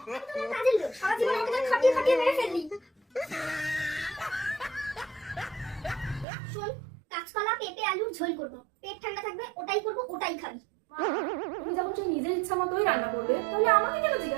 তো আমার কাজের লোক, সারা জীবন আমাকে তো খাটিয়ে খাটিয়ে মেরে ফেললি। শোন, কাঁচকলা পেঁপে আলুর ঝোল করবো, পেট ঠান্ডা থাকবে, ওটাই করবো, ওটাই খাবি। তুমি যখন সেই নিজের ইচ্ছা মতোই রান্না করবে, তাহলে আমাকে কেন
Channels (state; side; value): drops out; left; at 6.2 s